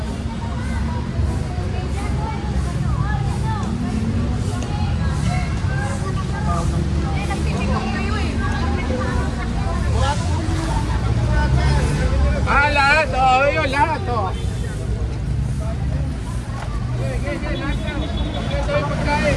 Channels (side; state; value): both; identical; correlation 1.00